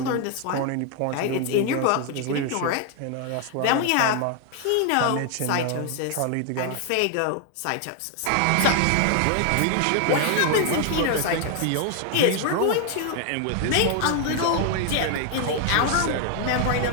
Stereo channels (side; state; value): both; different; correlation 0.00